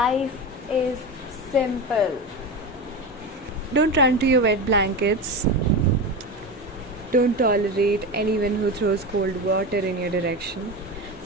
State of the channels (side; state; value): both; normal; correlation 0.22